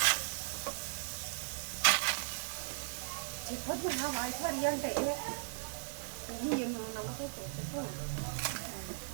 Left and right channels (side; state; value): left; silent; digital silence